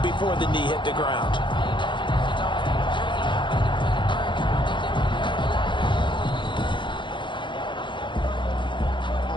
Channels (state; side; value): late; right; 0.23 ms